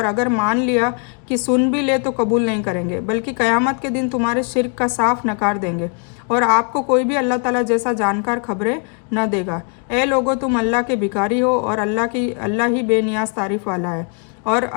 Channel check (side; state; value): right; quieter; 38.6 dB